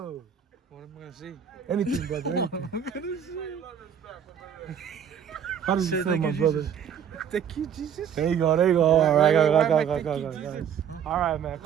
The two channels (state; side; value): quieter; left; 8.3 dB